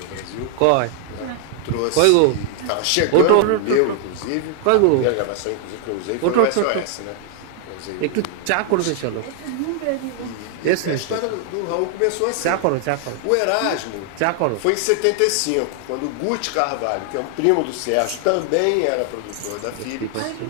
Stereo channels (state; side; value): different; both; correlation 0.00